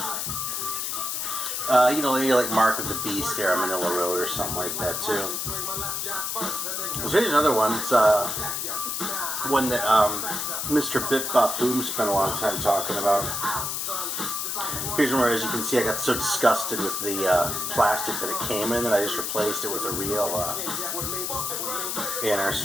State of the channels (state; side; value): noise; left; hiss, 2 dB below the sound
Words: you know, maybe like Mark of the Beast era, Manila Road, or something like that, too. So here's another one. It's one that Mr. Bip Bop Boom spent a long time talking about. Here's one where, as you can see, I got so disgusted with the plastic that it came in that I just replaced it with a real inner.